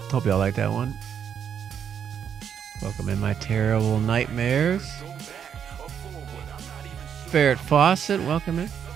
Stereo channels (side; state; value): left; quieter; 8.1 dB